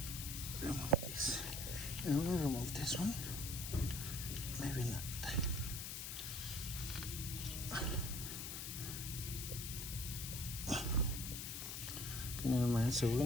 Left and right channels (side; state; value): left; noise; hiss, 5 dB below the sound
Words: remove this. And we'll remove this one. Maybe not. Okay, never mind. So we're